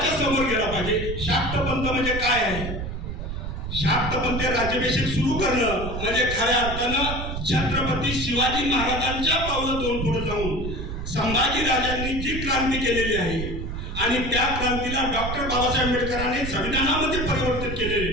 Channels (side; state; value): right; noise; rumble, 5 dB below the sound